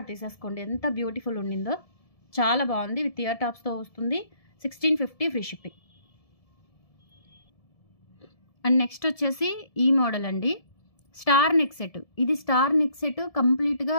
తీసేసుకోండి. ఎంత బ్యూటిఫుల్ ఉండిందో, చాలా బాగుంది. విత్ ఇయర్ టాప్స్తో వస్తుంది. 1650 ఫ్రీ షిప్పింగ్. అండ్ నెక్స్ట్ వచ్చేసి ఈ మోడల్ అండి, స్టార్ నెక్ సెట్. ఇది స్టార్ నెక్ సెట్ కంప్లీట్గా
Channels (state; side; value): late; right; 1.7 ms